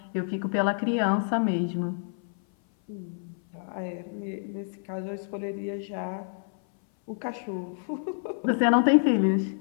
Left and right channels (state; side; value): silent; right; 57 dB below the other